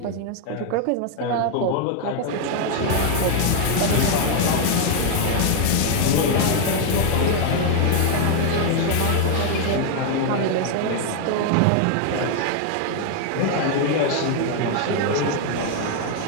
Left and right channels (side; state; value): both; different; correlation 0.00